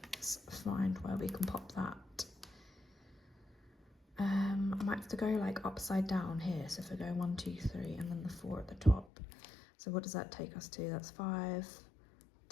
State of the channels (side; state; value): right; drops out; at 9.1 s